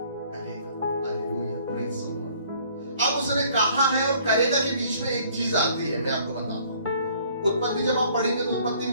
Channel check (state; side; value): inverted; both; correlation -0.58